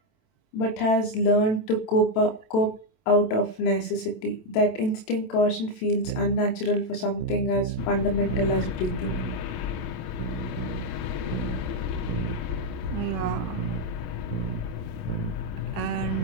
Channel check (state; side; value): late; right; 27 ms